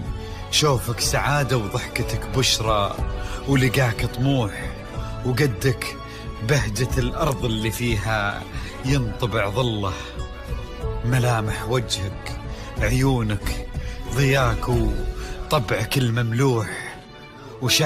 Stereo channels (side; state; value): both; identical; correlation 1.00